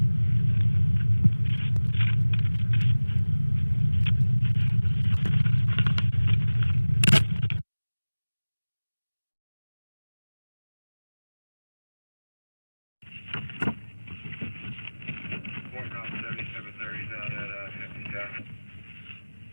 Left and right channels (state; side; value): inverted; both; correlation -1.00